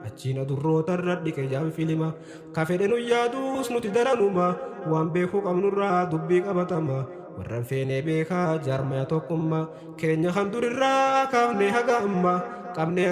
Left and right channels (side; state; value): both; identical; correlation 1.00